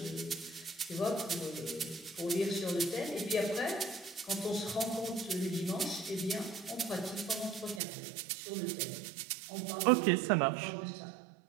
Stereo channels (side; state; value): left; drops out; at 7.8 s